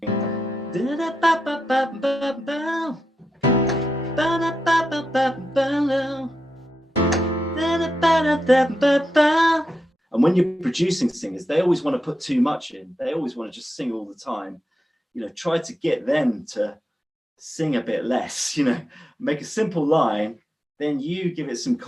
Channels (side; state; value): both; normal; correlation 0.86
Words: And when you're producing singers, they always want to put too much in. They always want to just sing all the time. You know, try to get them to sing a bit less, you know, make a simple line, then you give it some